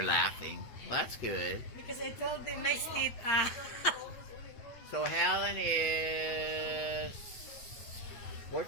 laughing. Well, that's good. Because I told them nice teeth. So Helen is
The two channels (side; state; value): right; late; 8.7 ms